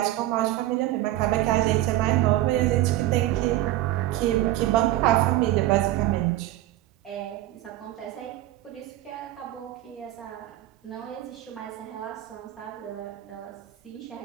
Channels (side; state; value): left; quieter; 15.1 dB